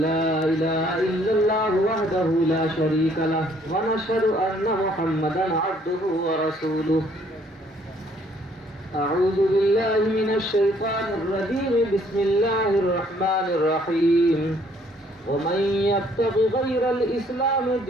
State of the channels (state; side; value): normal; both; correlation 0.63